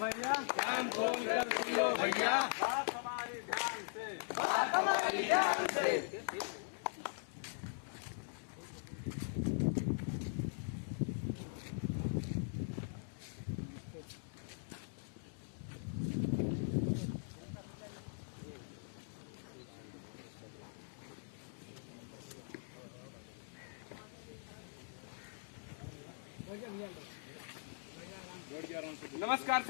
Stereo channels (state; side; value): silent; right; digital silence